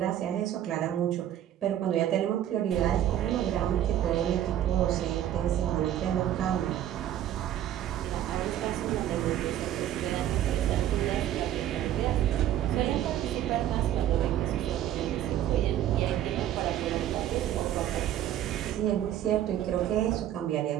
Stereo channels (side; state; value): left; quieter; 11.6 dB